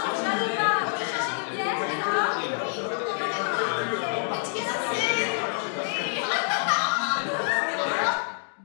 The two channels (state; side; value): silent; right; 60 dB below the other